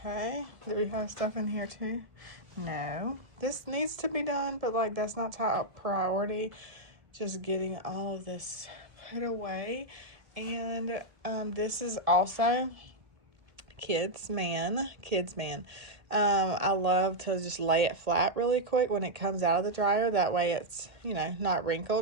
Do we have stuff in here too? No. This needs to be done, but like that's not top priority. Just getting all of this put away. And this is also kids man. I love to just lay it flat really quick when it comes out of the dryer. That way it's, not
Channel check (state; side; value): late; left; 1.7 ms